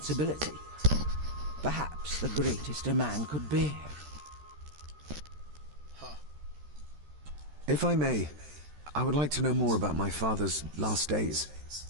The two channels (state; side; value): late; left; 13 ms